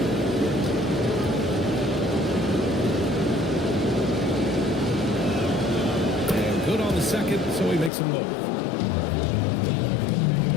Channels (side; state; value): right; drops out; at 7.9 s